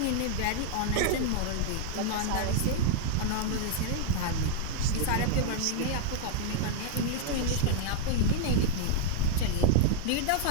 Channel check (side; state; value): both; different; correlation -0.01